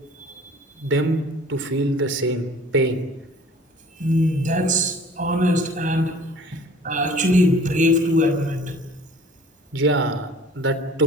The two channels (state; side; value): normal; both; correlation 0.49